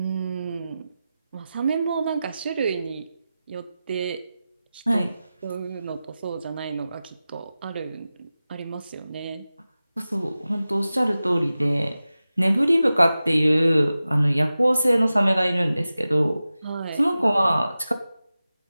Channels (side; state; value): both; inverted; correlation -0.95